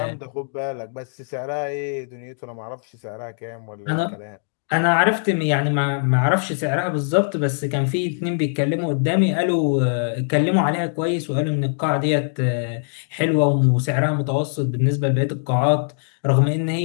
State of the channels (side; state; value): right; silent; digital silence